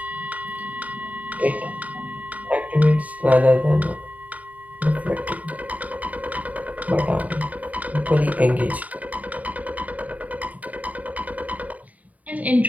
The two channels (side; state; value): left; late; 0.072 ms